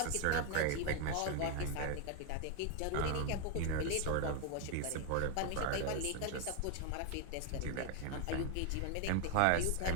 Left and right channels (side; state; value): both; different; correlation 0.00